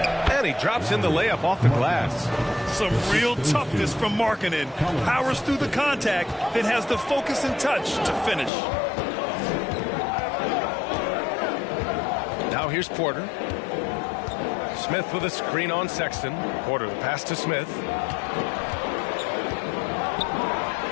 And he drops in the layup off the glass. Some real toughness from Markkanen. Powers through the contact, then has the focus and touch to finish. Now here's Porter. Smith with a screen on Sexton. Porter the pass to Smith.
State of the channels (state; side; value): drops out; right; at 8.5 s